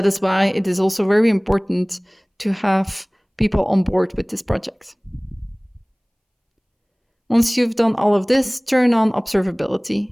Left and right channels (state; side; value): identical; both; correlation 1.00